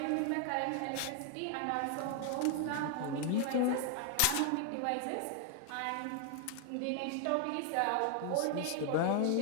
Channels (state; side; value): different; both; correlation 0.00